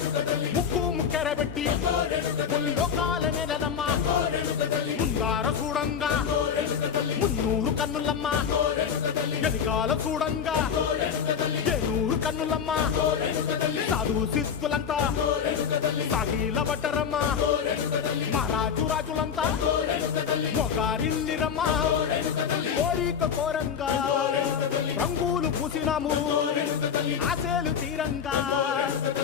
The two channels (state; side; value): quieter; right; 7.3 dB